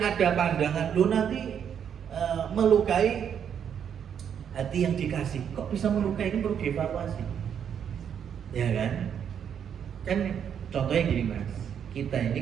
pandangan lu nanti melukai hati yang dikasih, kok bisa melukai, ini perlu dievaluasi. Ya kan? Kan contohnya gini Mas, kita ini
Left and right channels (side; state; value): left; quieter; 8.3 dB